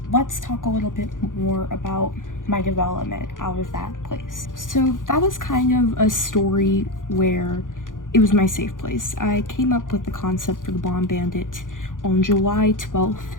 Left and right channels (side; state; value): right; late; 0.88 ms